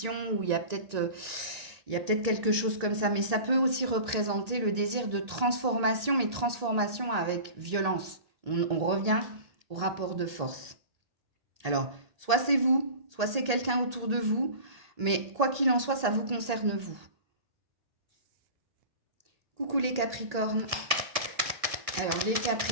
ou il y a peut-être quelque chose comme ça, mais ça peut aussi représenter le désir de transformation, mais transformation avec violence. On revient au rapport de force. Alors, soit c'est vous, soit c'est quelqu'un autour de vous, mais quoi qu'il en soit, ça vous concerne vous. Coucou les Capricornes. Alors, les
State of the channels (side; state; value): left; late; 1.8 ms